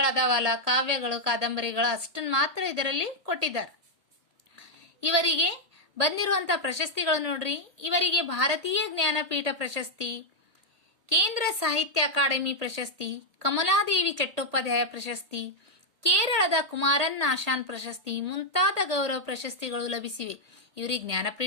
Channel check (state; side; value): late; left; 1.8 ms